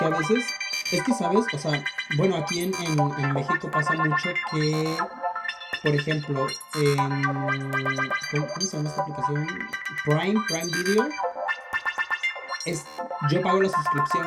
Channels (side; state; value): both; identical; correlation 1.00